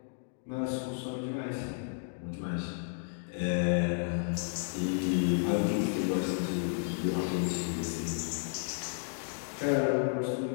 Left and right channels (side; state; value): right; silent; digital silence